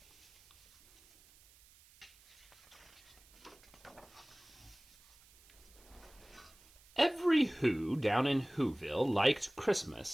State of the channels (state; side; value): noise; right; hiss, 26 dB below the sound